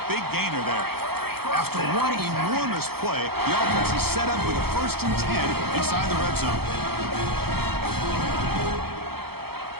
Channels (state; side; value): late; left; 0.96 ms